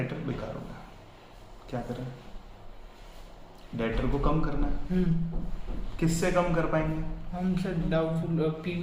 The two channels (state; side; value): identical; both; correlation 1.00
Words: बेकार हो गया। क्या करें? डेटर को कम करना है। किससे कम कर पाएंगे? हम सर डाउटफुल